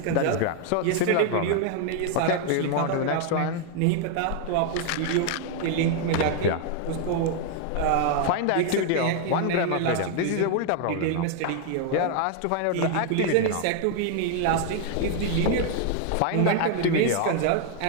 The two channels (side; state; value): both; different; correlation 0.00